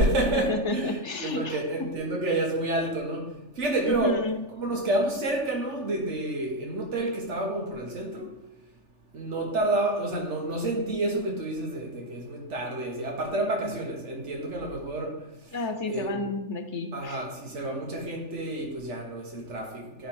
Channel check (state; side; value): late; left; 3.4 ms